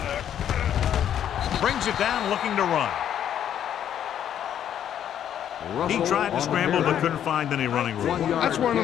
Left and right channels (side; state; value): right; quieter; 9.9 dB